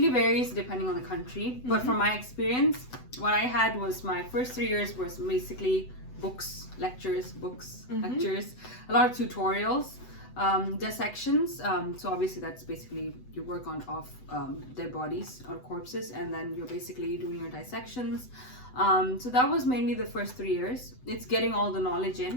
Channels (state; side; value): late; right; 7.9 ms